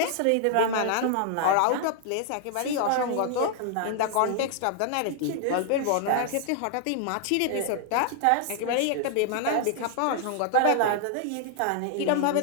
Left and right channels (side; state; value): both; different; correlation 0.00